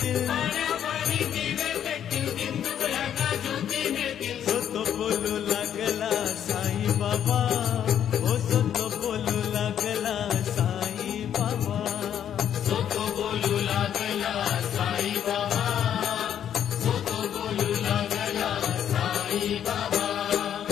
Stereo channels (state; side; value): quieter; right; 9.6 dB